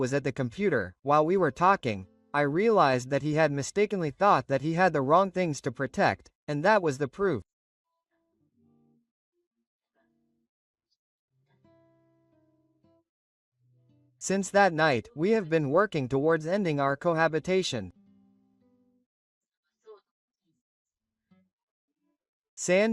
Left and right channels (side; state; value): both; identical; correlation 1.00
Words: at the computer, while we were talking, I realized that he had mistakenly thought that he had the wrong things to protect, and that was the proof. Since that night, we have been working towards ending our cohabitation.